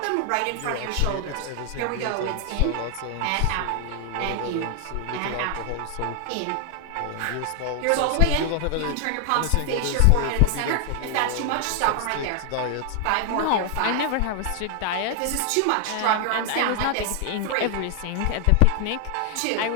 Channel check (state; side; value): different; both; correlation 0.00